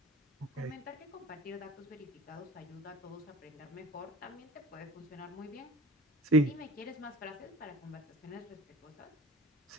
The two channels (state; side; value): normal; both; correlation 0.39